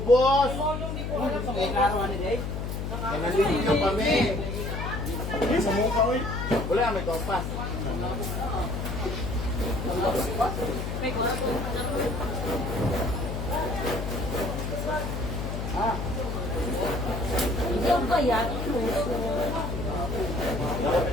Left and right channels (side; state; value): left; noise; hum, 4 dB below the sound